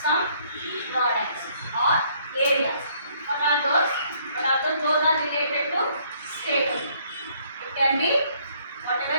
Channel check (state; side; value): inverted; both; correlation -0.65